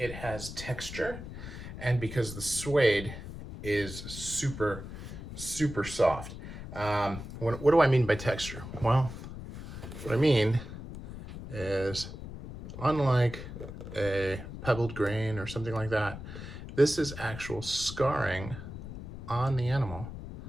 has texture and because the suede is super, super soft. What do I mean by texture? Well, what I mean is unlike a pebbled grain or something like that, this is actual scarring on the animal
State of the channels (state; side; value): noise; left; rumble, 10 dB below the sound